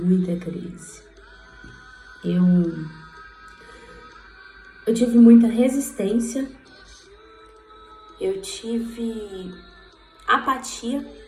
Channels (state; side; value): identical; both; correlation 1.00